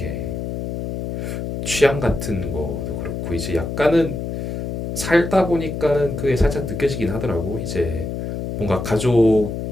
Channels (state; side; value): noise; left; hum, 4 dB below the sound